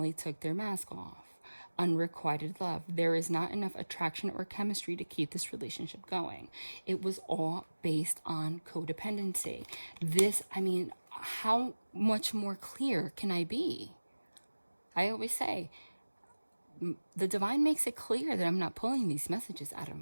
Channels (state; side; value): inverted; both; correlation -1.00